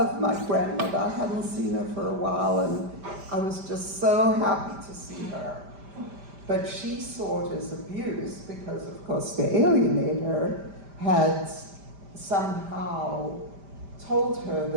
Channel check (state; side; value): late; left; 5.0 ms